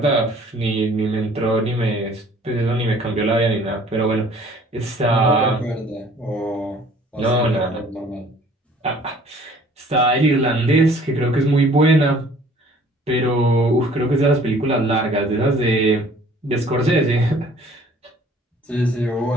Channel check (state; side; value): normal; both; correlation 0.54